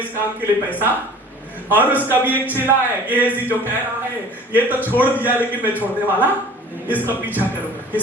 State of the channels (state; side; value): normal; both; correlation 0.46